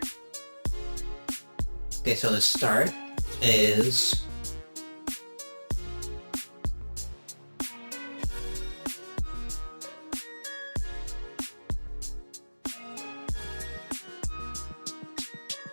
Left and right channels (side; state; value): both; inverted; correlation -1.00